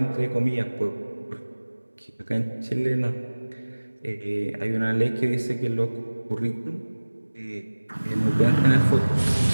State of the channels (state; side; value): inverted; both; correlation -1.00